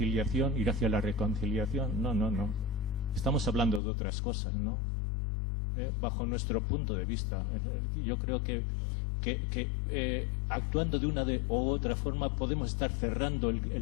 ir hacia la reconciliación. No. Estamos hablando de otras cosas, ¿no? Bajo nuestro punto de vista. Yo creo que actuando de una u otra forma podemos estar cerrando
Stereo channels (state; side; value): drops out; right; at 3.8 s